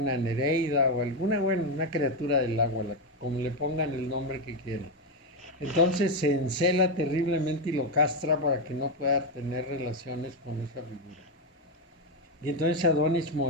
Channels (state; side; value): normal; both; correlation 0.07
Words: Nereida o alguna, una criatura del agua, como le pongan el nombre que quieran. Entonces se encela terriblemente y lo castra para que no pueda tener relaciones con esa figura. Y entonces Adonis